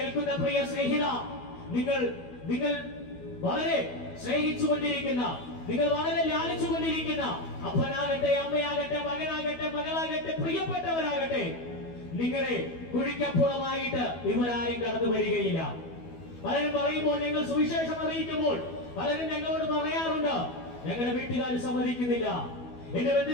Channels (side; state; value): right; late; 12 ms